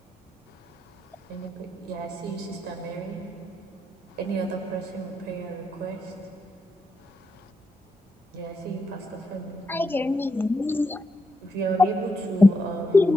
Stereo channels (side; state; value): both; normal; correlation 0.83